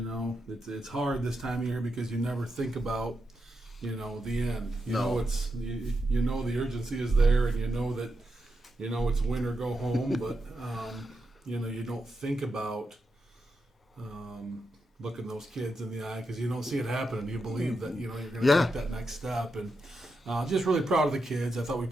hard this time of year because you never think about, the end. It's the urgency is there, and that, it's win or go home. But you don't think about looking those kids in the eye because you don't see it happening. You believe that you're going to take that next step, and just really proud of the kids. I thought we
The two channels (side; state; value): both; normal; correlation 0.86